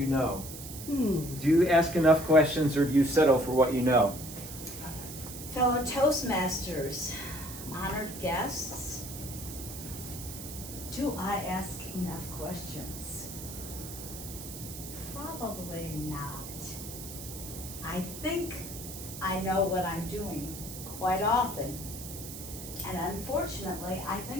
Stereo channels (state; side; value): noise; right; hiss, 11 dB below the sound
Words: know? Do you ask enough questions, or do you settle for what you know? Fellow Toastmasters, honored guests, do I ask enough questions? Probably not. I think I know what I'm doing quite often. And unfortunately, I